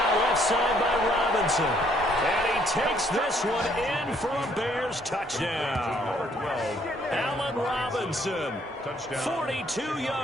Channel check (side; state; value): both; normal; correlation 0.66